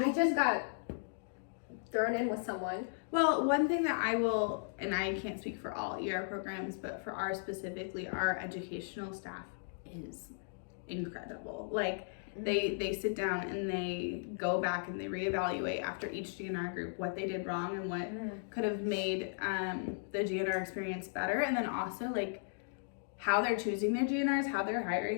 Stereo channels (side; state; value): right; silent; digital silence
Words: just got thrown in with someone. Well, one thing that I will, and I can't speak for all ER programs, but for ours specifically, our educational staff is incredible. Like, they sit down and they go back and they reevaluate after each GNR group what they did wrong and what could have made the GNR experience better. And then also, like, how they're choosing their GNRs, how they're